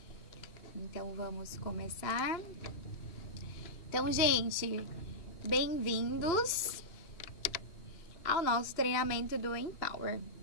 Então, vamos começar. Então, gente, bem-vindos ao nosso treinamento do Empower.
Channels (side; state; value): right; late; 2.8 ms